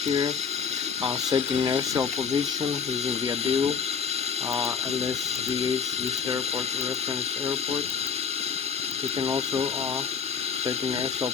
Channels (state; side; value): quieter; right; 6.4 dB